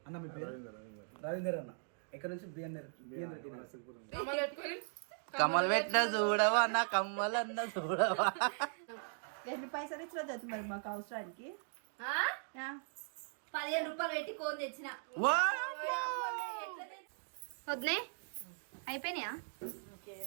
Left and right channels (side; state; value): left; silent; digital silence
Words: అన్న మీ పేరు? రవీందర్ అన్న. ఎక్కడ నుంచి? బిఎన్ రెడ్డి. కమ్మలు పెట్టిన చూడవా అన్న, కమ్మలు అన్న చూడవా. ఎన్ని పైసలు ఇచ్చిన మరి మాకు అవసరానికి 15 రూపాయలు పెట్టి కోన్ తెచ్చిన. వద్దే అయిపోయినాయా?